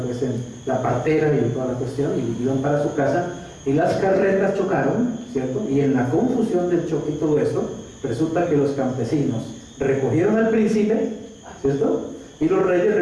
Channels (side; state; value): both; identical; correlation 1.00